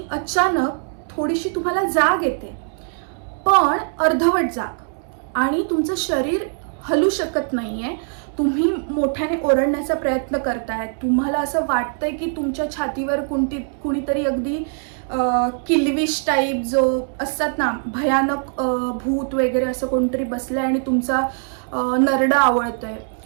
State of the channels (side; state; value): left; silent; 59 dB below the other